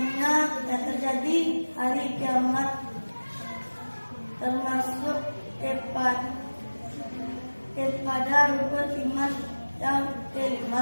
terjadi hari kiamat, termasuk kepada rukun iman yang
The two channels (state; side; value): inverted; both; correlation -1.00